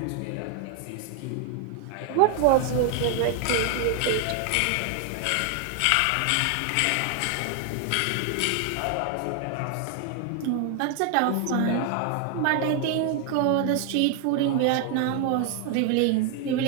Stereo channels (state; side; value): different; both; correlation 0.00